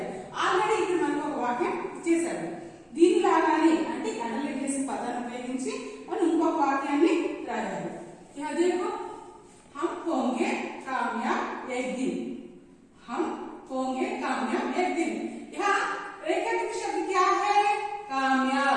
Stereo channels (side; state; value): both; identical; correlation 1.00